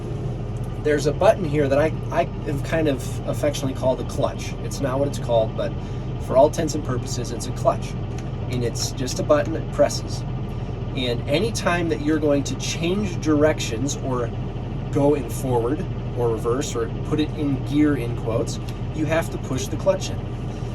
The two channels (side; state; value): both; identical; correlation 1.00